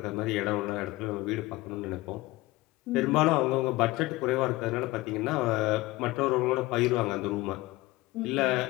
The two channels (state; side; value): quieter; right; 19.8 dB